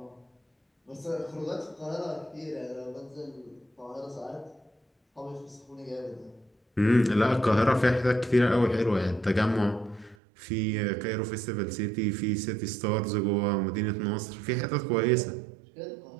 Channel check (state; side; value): drops out; left; at 10.2 s